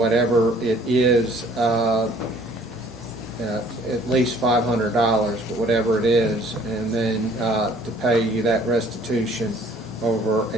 it is, at least $500, but whatever it is, and then to pay you that restitution over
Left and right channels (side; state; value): both; normal; correlation 0.56